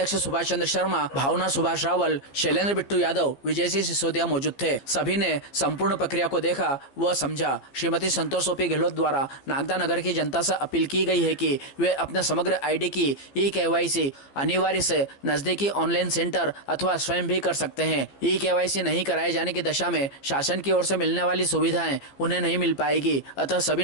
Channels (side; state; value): right; late; 15 ms